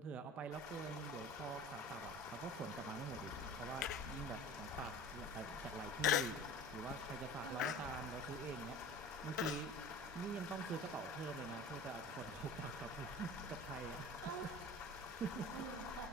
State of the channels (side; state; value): both; normal; correlation 0.40